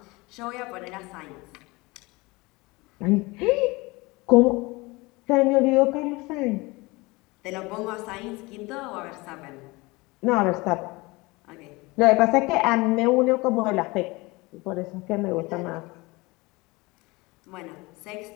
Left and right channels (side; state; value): right; quieter; 23.6 dB